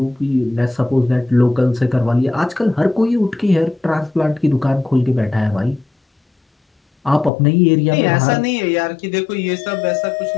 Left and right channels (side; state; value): right; drops out; at 7.3 s